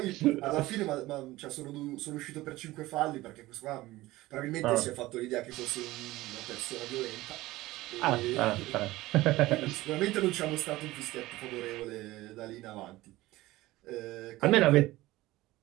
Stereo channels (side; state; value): left; quieter; 18.1 dB